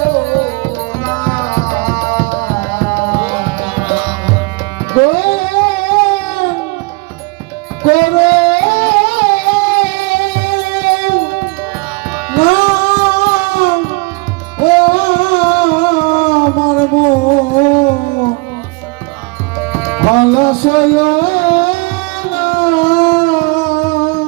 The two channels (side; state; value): left; quieter; 27.3 dB